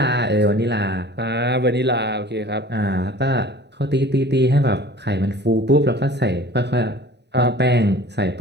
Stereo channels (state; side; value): late; left; 0.50 ms